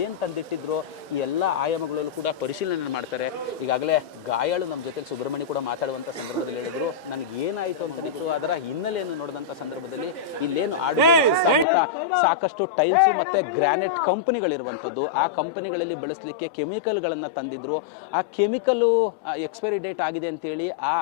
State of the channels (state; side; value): drops out; right; at 11.7 s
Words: ಏನು ತಂದಿಟ್ಟಿದ್ರು, ಈ ಎಲ್ಲ ಆಯಾಮಗಳಲ್ಲೂ ಕೂಡ ಪರಿಶೀಲನೆ ಮಾಡ್ತಾರೆ. ಈಗಾಗಲೇ ಗಾಯಾಳು ನಮ್ಮ ಜೊತೆ ಸುಬ್ರಹ್ಮಣ್ಯ ಕೂಡ ಮಾತಾಡುವಂಥ ಸಂದರ್ಭದಲ್ಲಿ ಹೇಳಿದ್ರು, ನನಗೆ ಏನಾಯಿತು ಅಂತನಿತ್ತು, ಅದರ ಹಿನ್ನೆಲೆಯನ್ನು ನೋಡಿದಂಥ ಸಂದರ್ಭದಲ್ಲಿ ಇಲ್ಲೇನು ಸಾಕಷ್ಟು ಟೈಲ್ಸ್ ಮತ್ತು ಗ್ರಾನೈಟ್ ಕಂಪನಿಗಳಿರುವಂಥದ್ದು. ಆ ಕಂಪನಿಗಳಲ್ಲಿ ಬೆಳೆಸಲಿಕ್ಕೆ ಕೆಮಿಕಲ್ಗಳನ್ನು ತಂದಿದ್ರು. ಆ ಕೆಮಿಕಲ್ಲು ಎಕ್ಸ್ಪೈರಿ ಡೇಟ್ ಆಗಿದೆ ಅಂತೇಳಿ ಆ